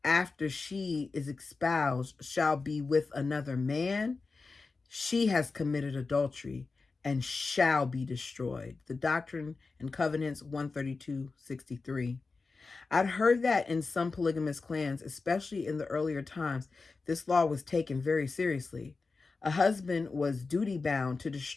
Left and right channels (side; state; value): right; quieter; 4.1 dB